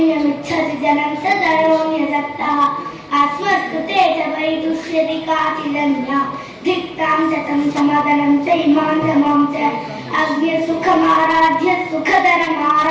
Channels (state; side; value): identical; both; correlation 1.00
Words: जनं सदयोन्यसक्तः अस्मत्कृते च वैदुष्यति काचिदन्या धिक्तां शतं समादनं च इमां च मां च अज्ञसुखमाराध्य